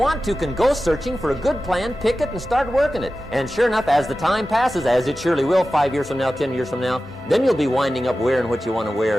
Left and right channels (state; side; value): normal; both; correlation 0.94